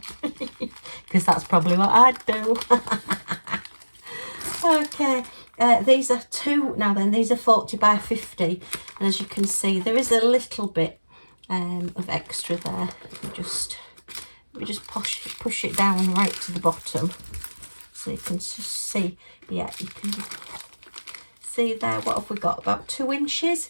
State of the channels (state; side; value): inverted; both; correlation -1.00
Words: because that's probably what I'd do. Okay, these are two, now then, these are 40 by 50, and as you can see, there is a little bit of extra there. Let me just push it down right to the bottom, so you can just see. Yeah, you can see there. What have we got? About 2